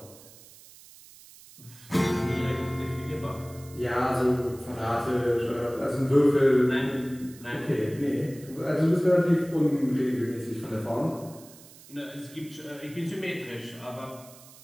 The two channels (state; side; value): noise; right; hiss, 21 dB below the sound